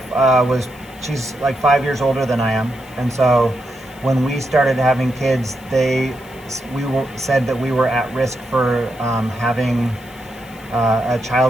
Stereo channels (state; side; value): noise; left; hiss, 24 dB below the sound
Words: she's like 5 years older than I am, and so when we started having kids, said that we were at risk for having a